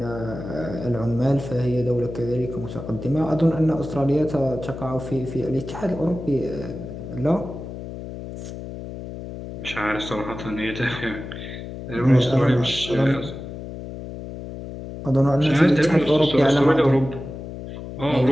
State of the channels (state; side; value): noise; left; hum, 10 dB below the sound